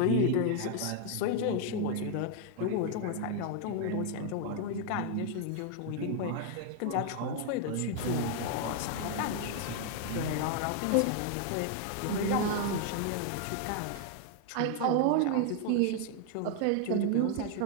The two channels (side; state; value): both; different; correlation 0.00